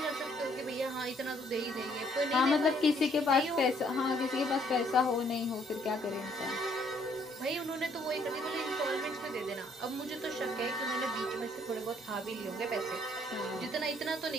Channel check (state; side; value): normal; both; correlation 0.65